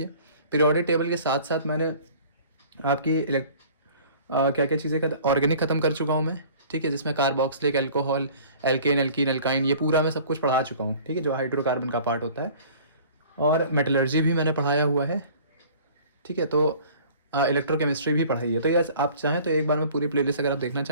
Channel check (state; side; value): inverted; both; correlation -0.48